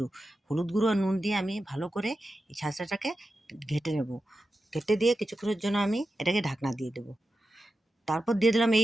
হলুদ গুঁড়ো আর নুন দিয়ে আমি ভালো করে এই ছাঁচড়াটাকে ঘেঁটে নেব। ঘেঁটে দিয়ে কিছুক্ষণের জন্য আমি এটাকে ঢাকনা দিয়ে দেবো। তারপর দিয়ে দিলাম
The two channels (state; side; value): normal; both; correlation 0.91